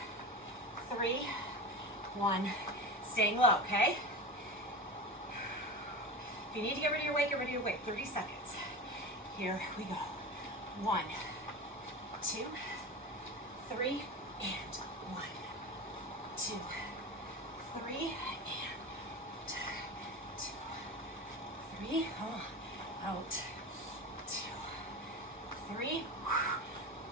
3, 1. Staying low, okay? If you need to get rid of your weight, get rid of your weight. 30 seconds. Here we go. 1, 2, 3, and 1, 2, 3, and 2, 3. Out. 2, 3.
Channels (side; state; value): both; normal; correlation 0.27